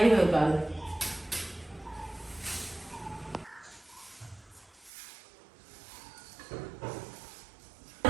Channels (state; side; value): drops out; left; at 4.9 s